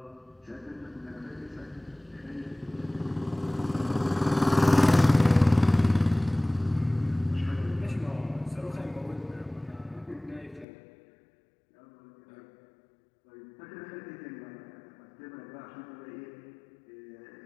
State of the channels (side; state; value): right; drops out; at 10.7 s